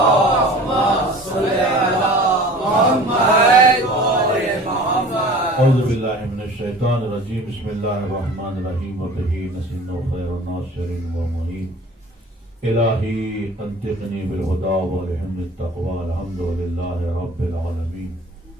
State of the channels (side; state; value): both; normal; correlation 0.43